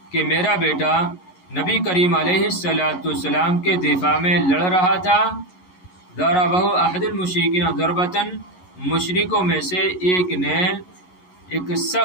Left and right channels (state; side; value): late; right; 11 ms